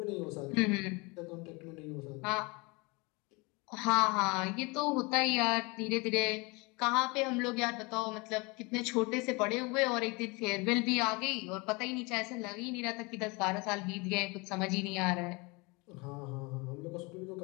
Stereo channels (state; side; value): quieter; right; 27.2 dB